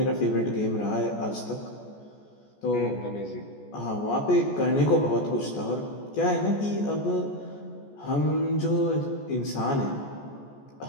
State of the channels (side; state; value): right; late; 14 ms